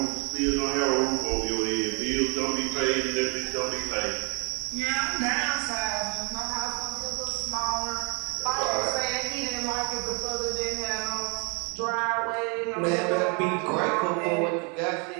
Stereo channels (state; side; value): quieter; left; 33.8 dB